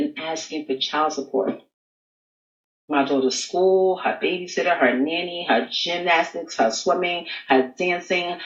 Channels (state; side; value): identical; both; correlation 1.00